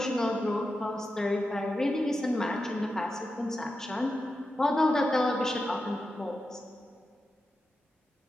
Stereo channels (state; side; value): normal; both; correlation 0.90